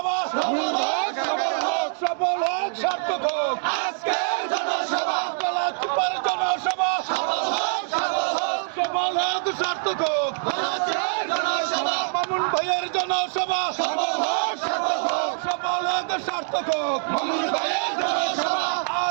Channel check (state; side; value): silent; left; digital silence